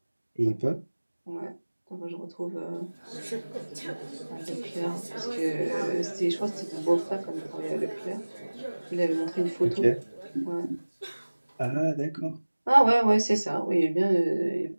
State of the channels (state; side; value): inverted; both; correlation -1.00